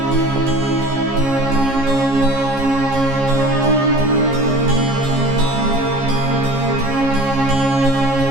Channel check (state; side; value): late; left; 15 ms